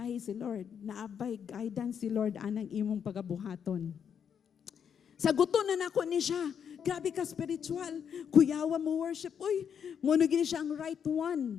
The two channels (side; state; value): right; quieter; 7.7 dB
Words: si Lord. Naabay, guidance si Lord anang imong pagabuhaton. Saguton na nako ni siya. Grabe ka spiritual. Kuyawa mo worship. Uy, monogin siya ang right